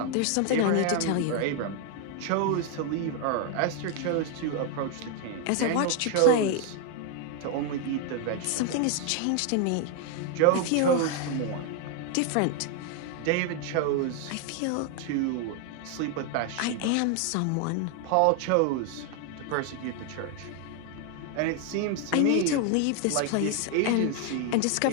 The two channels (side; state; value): both; different; correlation 0.01